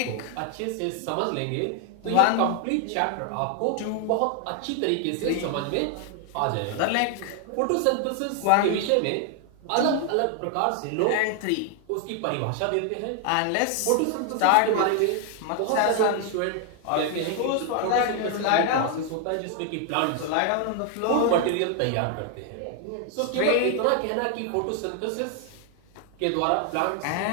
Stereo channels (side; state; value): both; different; correlation 0.00